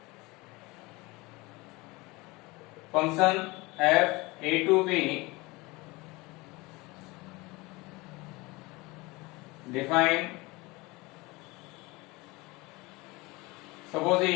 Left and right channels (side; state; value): right; quieter; 23.3 dB